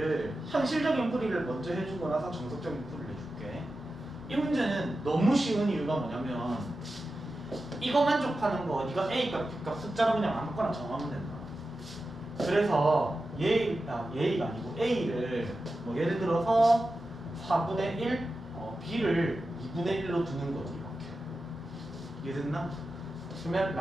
현실적인 풀이를 먼저 해주고 나서 정석적인 풀이를 해줄게. 이 문제는 너무 쉬운 이유가 뭐냐면 이거 만족하는 거 네가 A값, B값 숫자로 그냥 아무거나 정하면 된다. 그래서 예의가 아니고 A를 뭐 예를 들어서 4분의 1, B를 2분의 1로 두는 거지. 이렇게. 이해됐나? 그러면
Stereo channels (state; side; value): normal; both; correlation 0.92